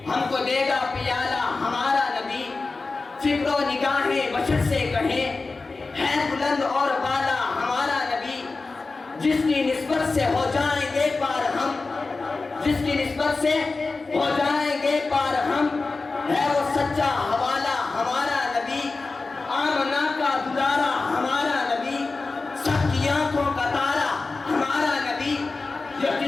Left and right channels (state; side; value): quieter; right; 3.8 dB